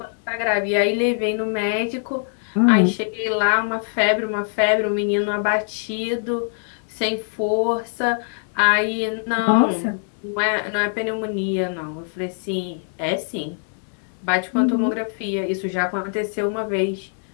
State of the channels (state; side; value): silent; right; digital silence